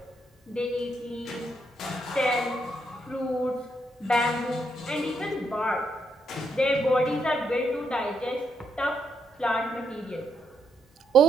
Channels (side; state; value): both; normal; correlation 0.78